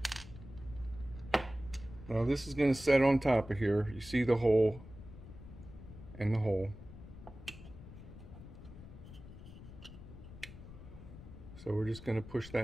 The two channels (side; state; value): left; noise; rumble, 15 dB below the sound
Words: Now this is going to set on top of here. You see the hole and the hole. So we're just going to push